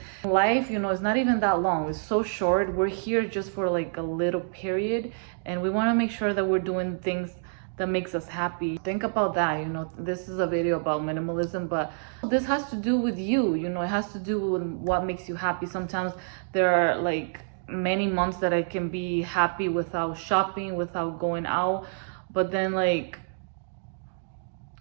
life, is not even that long. It's so short. We're here just for like a little period, and we want to make sure that we're doing things that makes us happy. Think about that. This is a video about minimalism, but this has to do with you. It has to do with what makes you happy. Sometimes there are like many months that I can be happy without shopping, without going out, but then like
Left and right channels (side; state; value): left; silent; digital silence